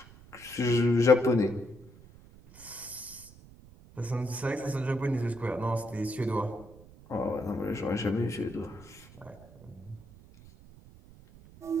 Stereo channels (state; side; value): noise; right; rumble, 21 dB below the sound